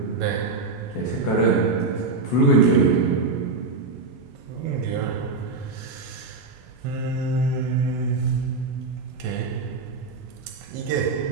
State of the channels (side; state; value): left; quieter; 3.8 dB